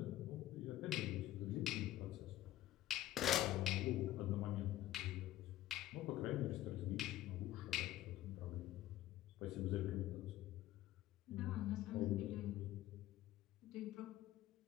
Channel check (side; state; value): right; quieter; 14.3 dB